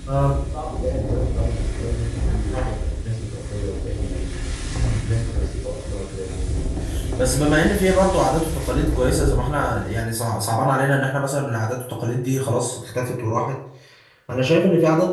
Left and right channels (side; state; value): both; identical; correlation 1.00